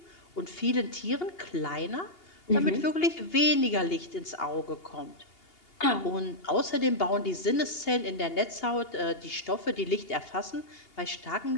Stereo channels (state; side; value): late; right; 2.8 ms